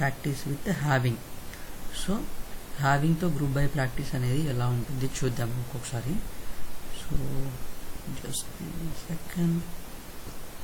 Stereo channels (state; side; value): identical; both; correlation 1.00